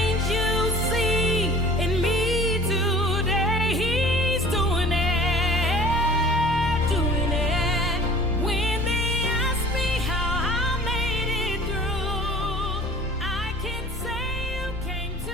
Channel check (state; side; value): normal; both; correlation 0.46